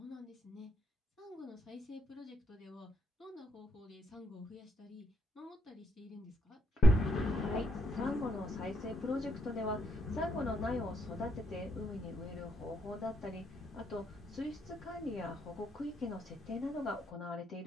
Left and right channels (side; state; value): both; normal; correlation 0.75